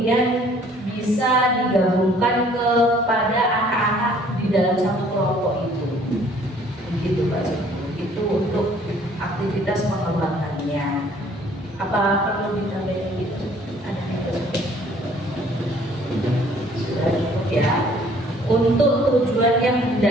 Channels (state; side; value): normal; both; correlation 0.58